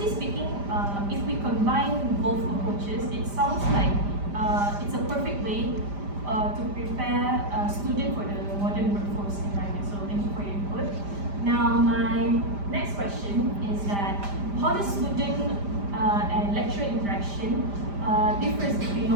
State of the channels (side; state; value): left; late; 5.0 ms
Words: speaking, if we combine both approaches, it sounds like it's a perfect way to prepare a student for the modern workforce environment. So thank you for your input. Now my next question is that how does student and lecturer interaction differs between